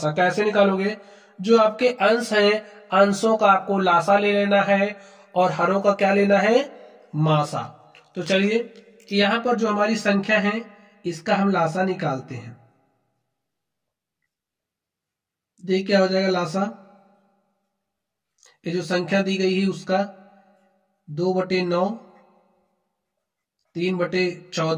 कैसे निकालोगे, जो आपके अंश हैं अंशों का आपको लासा ले लेना है और हरों का क्या लेना है, मासा। तो चलिए यहां पर जो हमारी संख्या है इसका हम लासा निकालते हैं। देख क्या हो जाएगा लासा, ये जो संख्या दी गई है उसका 2/9,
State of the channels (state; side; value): identical; both; correlation 1.00